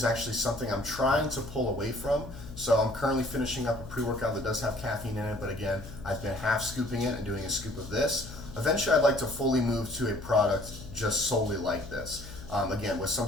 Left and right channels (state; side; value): noise; left; hum, 13 dB below the sound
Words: actually something I'm trying to pull away from. So I'm currently finishing up a pre-workout that does have caffeine in it, but again, I've been half scooping it and doing a scoop of this. Eventually, I'd like to fully move to a product just solely like this. Again, with some